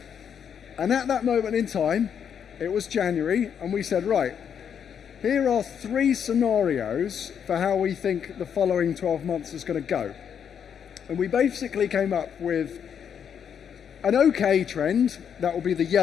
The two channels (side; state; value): right; quieter; 8.0 dB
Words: And at that moment in time, it was January, and we said, right, here are 3 scenarios for how we think the following 12 months is going to go. And we basically came up with an okay trend, that will be the